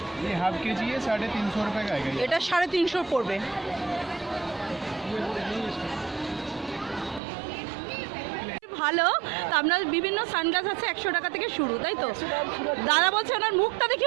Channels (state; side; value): drops out; left; at 7.2 s